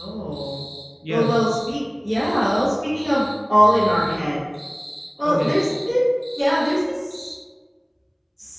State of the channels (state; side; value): identical; both; correlation 1.00